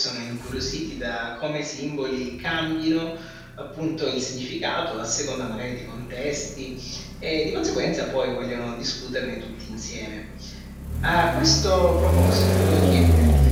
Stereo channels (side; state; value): both; identical; correlation 1.00